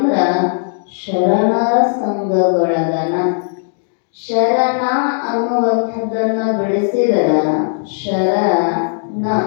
ಶರಣರ ಸಂಘಗೊಳಗನ. ಶರಣ ಅನ್ನುವಂಥದ್ದನ್ನ ಬೆಳೆಸಿದರ ಶರಣ,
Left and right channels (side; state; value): right; silent; digital silence